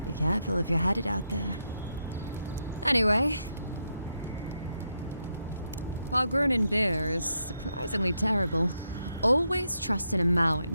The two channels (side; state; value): both; inverted; correlation -0.82